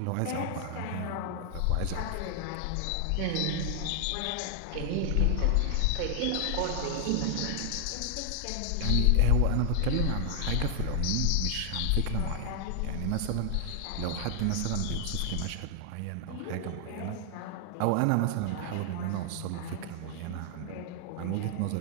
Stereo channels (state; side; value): different; both; correlation 0.00